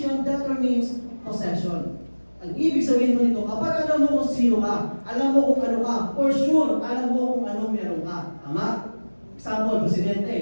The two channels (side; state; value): both; inverted; correlation -1.00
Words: determines possession. Ang ibig sabihin mo nito, kapag alam mo kung sino ka, alam mo kung ano ka, for sure, alam mo kung anong meron ka. Tama? Example,